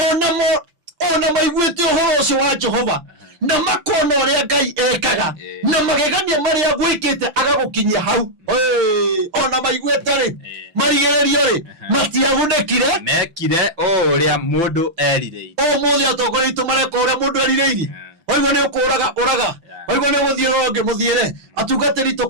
ona maiguĩte ũhoro ũcio wa Jehova na makona ũrĩa Ngai ekaga na magegania marĩa gwĩkĩte agagũkinyia hau. Ona maiguĩte rĩ, marigĩrĩrio rĩ, matiagunĩkire mekire ũrĩa mũndũ erirĩirie. Ũmũthĩ atongoria aitũ mareka ũrĩa mũndũ erirĩirie. Waigua nĩ ũkũraga ũraga, waigua nĩ gũthiĩ rũngĩ mũthiĩre, atungatĩri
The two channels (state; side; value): late; left; 5.9 ms